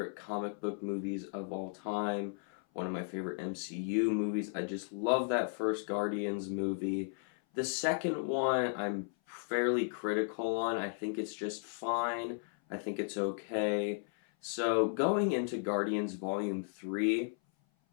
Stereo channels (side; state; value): right; silent; 54 dB below the other